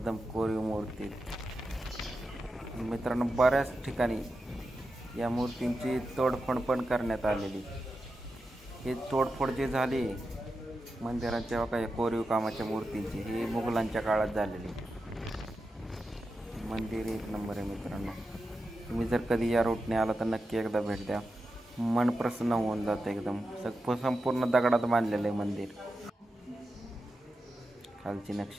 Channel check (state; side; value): normal; both; correlation 0.90